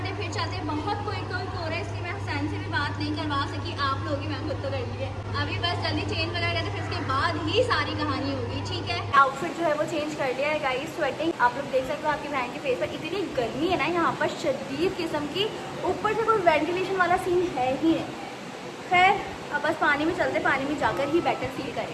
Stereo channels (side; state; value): both; identical; correlation 1.00